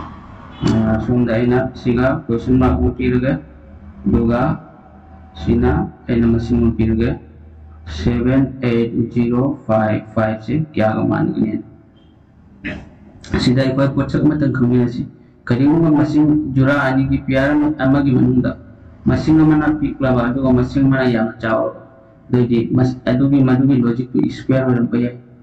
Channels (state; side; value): identical; both; correlation 1.00